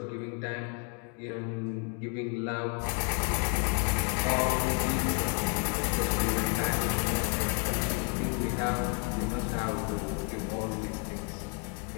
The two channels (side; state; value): right; quieter; 37.9 dB